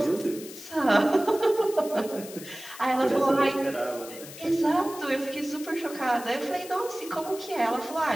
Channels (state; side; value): noise; left; hiss, 15 dB below the sound